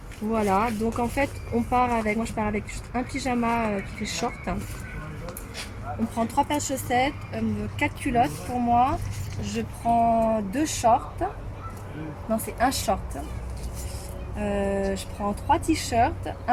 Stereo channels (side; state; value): both; identical; correlation 1.00